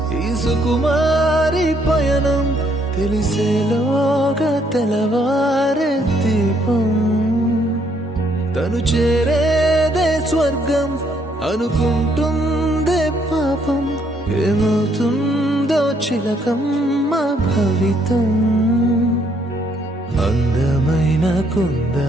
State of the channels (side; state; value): both; normal; correlation 0.70